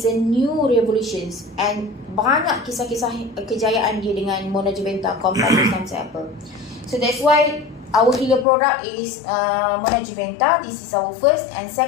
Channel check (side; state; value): right; drops out; at 8.5 s